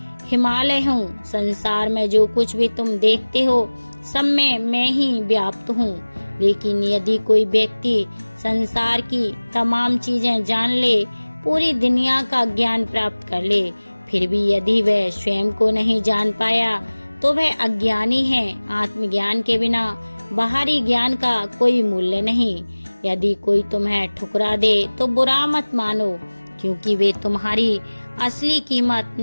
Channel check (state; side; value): inverted; both; correlation -1.00